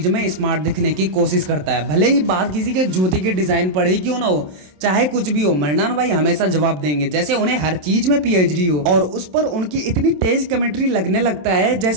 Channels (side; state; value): left; late; 27 ms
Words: में स्मार्ट दिखने की कोशिश करता है, भले ही बात किसी के जूते के डिजाइन पर ही क्यों ना हो, चाहे कुछ भी हो। मन्नान भाई हमेशा जवाब देंगे जैसे उन्हें हर चीज में पीएचडी हो। और उस पर उनकी इतनी तेज कमेंट्री लगने लगता है